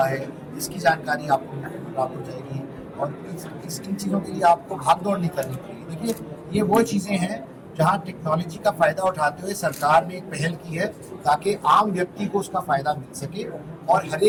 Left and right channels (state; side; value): identical; both; correlation 1.00